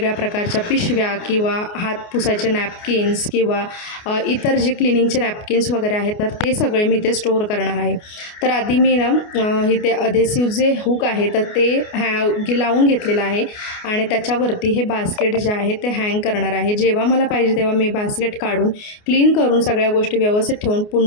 प्रकारच्या पिशव्या किंवा हात पुसायचे नॅपकिन्स किंवा इतर जे क्लिनिंगचे नॅपकिन्स वगैरे आहेत तर ते सगळे मी इथे स्टोअर करणार आहे। तर आधी मी ना इथे अधेसिव्ह जे हुक आहे तर ते लावून घेतलेलं आहे आणि त्याच्यावरती हे बास्केट जे आहे ते हँग करणार आहे। जेव्हा मला पाहिजे तेव्हा मी बास्केट काढून क्लीन करून सगळ्या गोष्टी व्यवस्थित ठेवून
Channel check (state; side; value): late; right; 29 ms